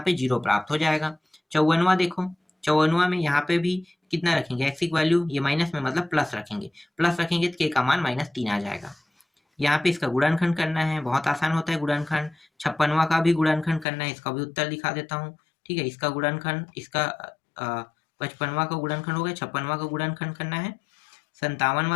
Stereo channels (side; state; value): right; drops out; at 13.9 s